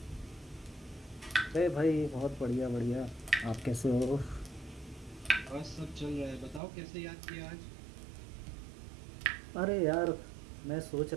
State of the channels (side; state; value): left; drops out; at 6.6 s